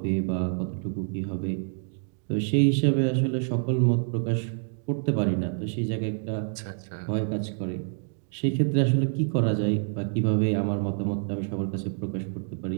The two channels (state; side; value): silent; left; 58 dB below the other